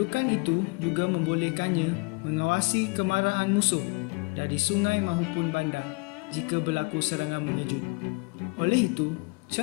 itu juga membolehkannya mengawasi kemarahan musuh dari sungai maupun bandar jika berlaku serangan mengejut. Oleh itu,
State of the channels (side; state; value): right; quieter; 29.2 dB